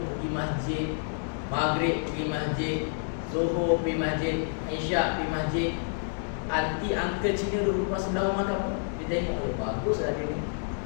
pergi masjid, maghrib pergi masjid, zuhur pergi masjid, isyak pergi masjid, anti uncle Cina duduk sebelah rumah kamu, dia tengok, oh baguslah dia ni,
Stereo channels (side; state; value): right; silent; digital silence